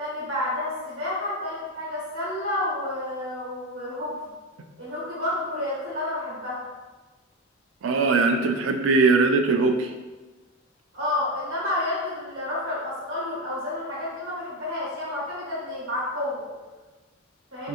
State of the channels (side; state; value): both; normal; correlation 0.13